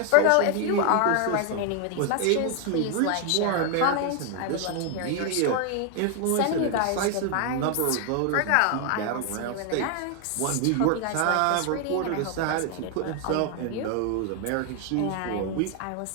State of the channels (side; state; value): both; different; correlation 0.00